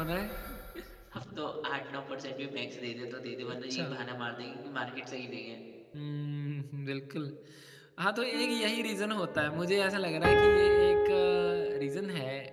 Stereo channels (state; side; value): identical; both; correlation 1.00